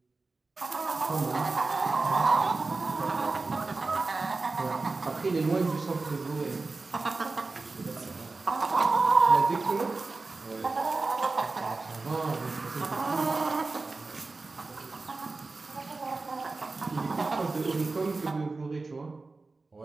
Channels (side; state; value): left; quieter; 3.7 dB